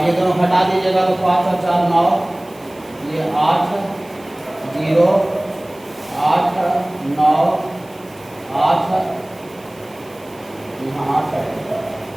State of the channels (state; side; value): noise; right; hiss, 26 dB below the sound